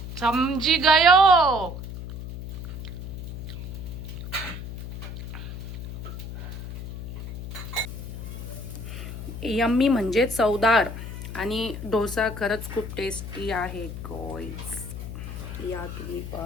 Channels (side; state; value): left; noise; hum, 8 dB below the sound